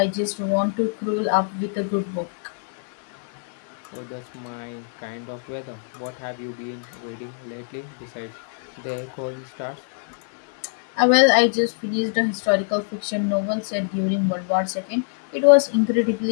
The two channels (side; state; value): right; silent; digital silence